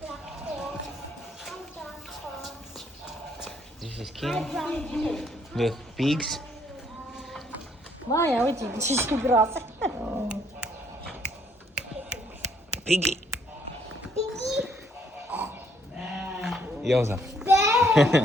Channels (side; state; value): both; normal; correlation 0.67